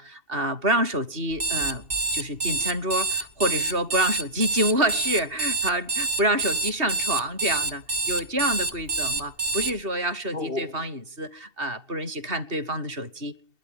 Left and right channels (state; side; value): late; left; 2.7 ms